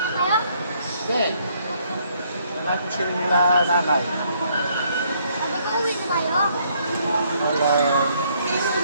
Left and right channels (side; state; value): both; inverted; correlation -0.68